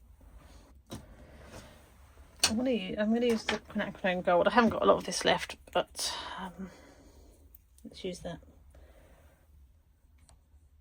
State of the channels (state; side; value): identical; both; correlation 1.00